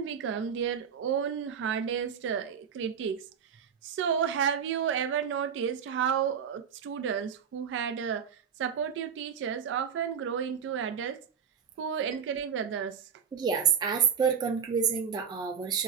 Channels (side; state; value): left; quieter; 7.4 dB